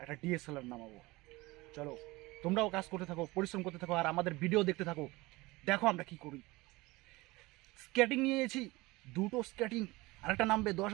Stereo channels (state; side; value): quieter; left; 21.4 dB